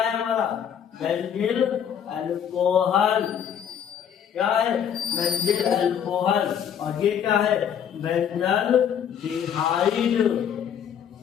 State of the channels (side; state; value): right; quieter; 8.7 dB